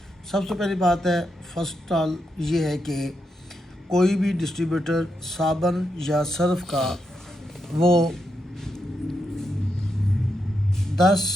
सबसे पहली बात है, फर्स्ट ऑल ये है कि कोई भी डिस्ट्रीब्यूटर साबुन या सर्फ का वो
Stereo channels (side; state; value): both; normal; correlation 0.83